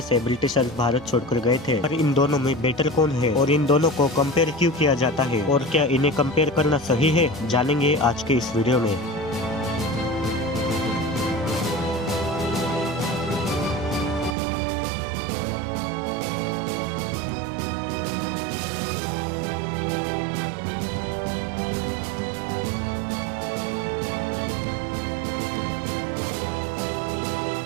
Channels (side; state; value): left; drops out; at 14.4 s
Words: ब्रिटिशर्स भारत छोड़कर गए थे। पर इन दोनों में बेटर कौन है और इन दोनों को कंपेयर क्यों किया जाता है, और क्या इन्हें कंपेयर करना सही है, जानेंगे आज के इस वीडियो में।